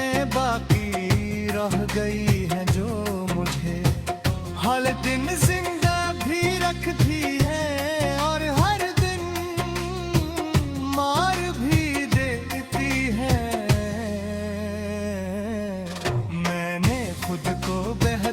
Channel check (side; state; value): both; identical; correlation 1.00